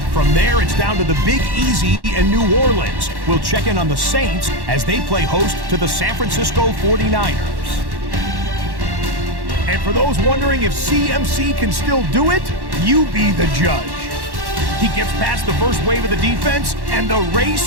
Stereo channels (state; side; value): late; left; 1.1 ms